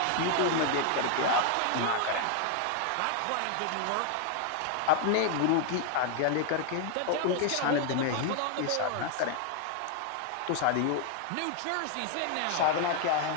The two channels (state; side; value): different; both; correlation 0.00